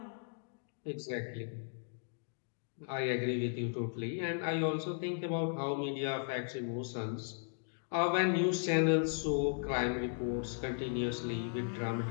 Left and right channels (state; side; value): silent; right; digital silence